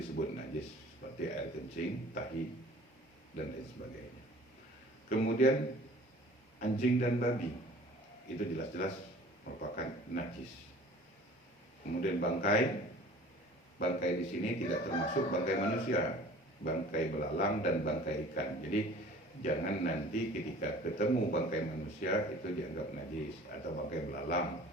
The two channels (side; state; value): both; normal; correlation 0.47